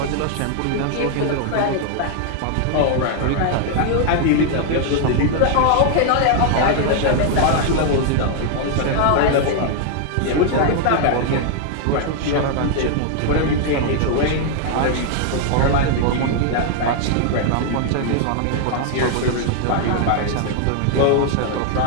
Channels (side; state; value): both; different; correlation 0.00